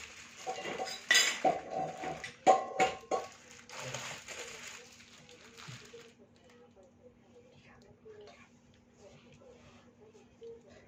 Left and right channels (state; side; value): identical; both; correlation 1.00